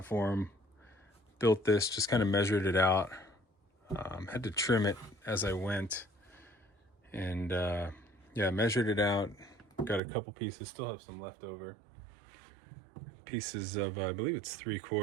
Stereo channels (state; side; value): drops out; left; at 10.0 s